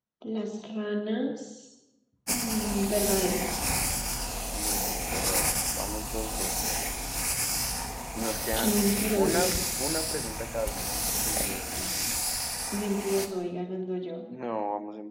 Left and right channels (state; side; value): identical; both; correlation 1.00